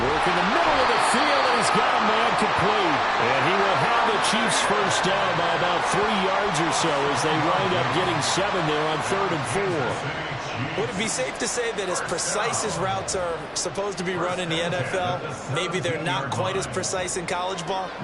in the middle of the field, and he's got a man complete. And he will have the Chiefs first down by about 3 yards or so as they wind up getting 7 there on 3rd and 4. Would it be safe to say that as precise as routes are supposed to be run in the NFL, maybe they're not quite as precise in college ball?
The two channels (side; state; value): both; identical; correlation 1.00